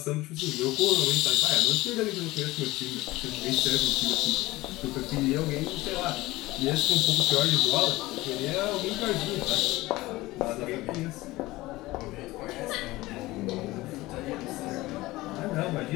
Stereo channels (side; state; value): right; quieter; 19.0 dB